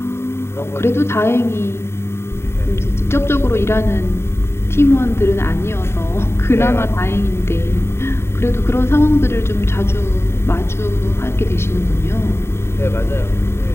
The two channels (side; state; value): right; late; 0.12 ms